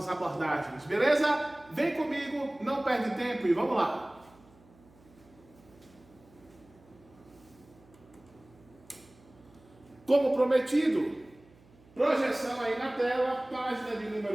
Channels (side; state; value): right; noise; hum, 27 dB below the sound